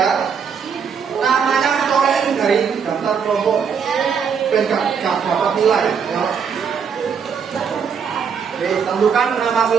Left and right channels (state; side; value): quieter; left; 6.7 dB